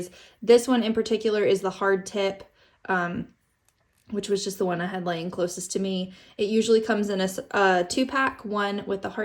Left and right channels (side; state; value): both; identical; correlation 1.00